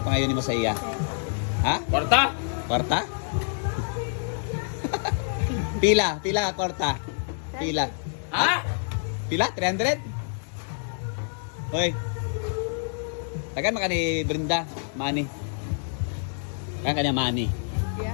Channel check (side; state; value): right; silent; digital silence